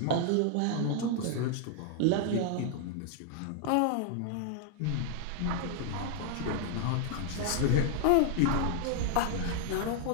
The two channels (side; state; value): both; different; correlation 0.00